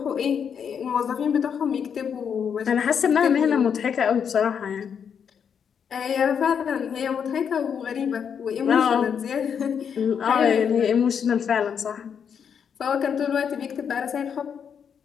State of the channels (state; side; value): quieter; right; 7.4 dB